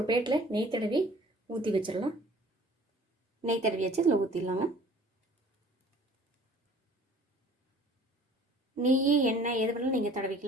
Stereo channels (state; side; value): normal; both; correlation 0.51